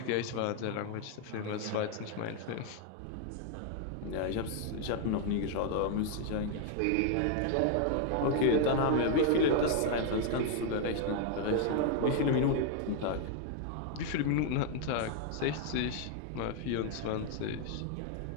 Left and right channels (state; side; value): different; both; correlation 0.00